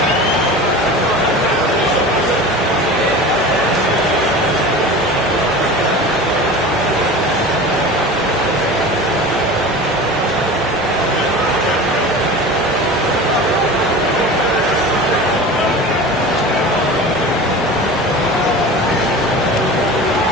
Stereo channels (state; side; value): normal; both; correlation 0.34